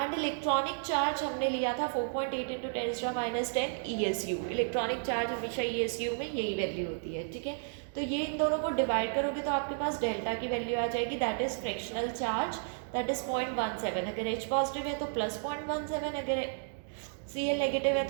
इलेक्ट्रॉनिक चार्ज हमने लिया था 4.8 into 10 to the minus 10 ESU. Electronic charge हमेशा ESU में यही वैल्यू होती है. ठीक है, तो ये इन दोनों को डिवाइड करोगे तो आपके पास डेल्टा की वैल्यू आ जाएगी, that is fractional charge, that is 0.17. अगर H पॉजिटिव है तो प्लस 0.17, अगर Cl नेगेटिव है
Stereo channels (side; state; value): left; silent; digital silence